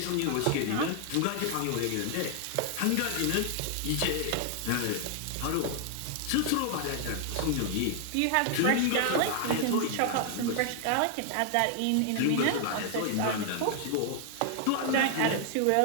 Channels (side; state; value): both; different; correlation 0.00